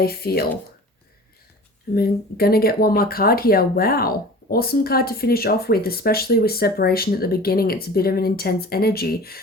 feel. I'm going to get one more card here. Wow. Awesome card to finish off with, especially with separation at the beginning. It's a bit of an intense energy.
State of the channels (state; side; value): normal; both; correlation 0.40